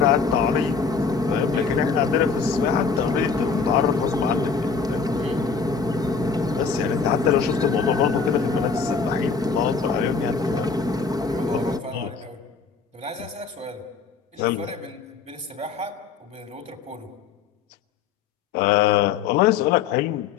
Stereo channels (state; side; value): quieter; right; 5.4 dB